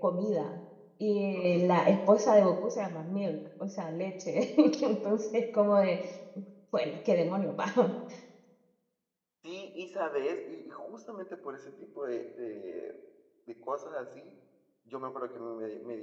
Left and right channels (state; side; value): identical; both; correlation 1.00